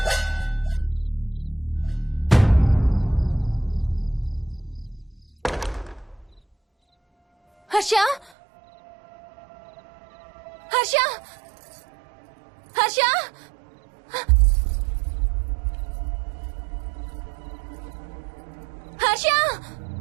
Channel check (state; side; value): drops out; left; at 8.3 s